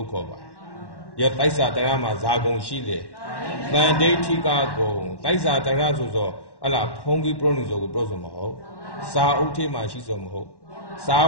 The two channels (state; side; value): late; right; 1.1 ms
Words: ့ခေါ်ပါယောတိုက်စာတရားမှာဇာဂုံရှိလေတန်ဒိဋ္ဌိကဂုံတိုက်စာတရားဆိုဟလားဖုံးကြီးပရောနိဆိုကိုပြောဆိုမဟုတ်စာအုပ်ထဲမှာရှိဆိုမဟုတ်စာ